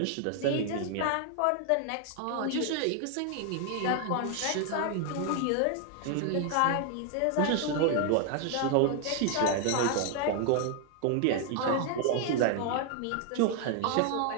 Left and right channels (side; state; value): both; different; correlation 0.00